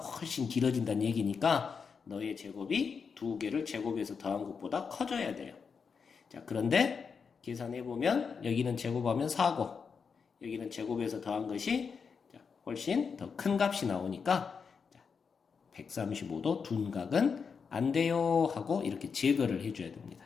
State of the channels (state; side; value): quieter; right; 5.8 dB